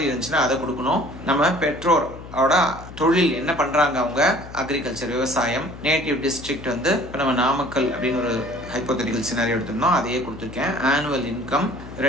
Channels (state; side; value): noise; left; hum, 15 dB below the sound